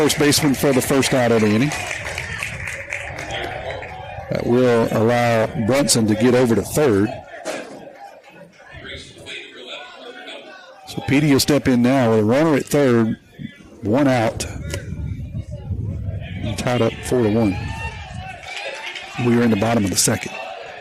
baseman for the first out of the inning. That will allow Brunson to get over to third. Petey will step in now with a runner at third, one out. Tied up 4-1. We are in the bottom of the second.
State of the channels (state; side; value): identical; both; correlation 1.00